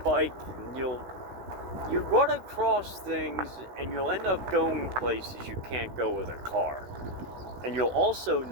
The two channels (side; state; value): left; late; 16 ms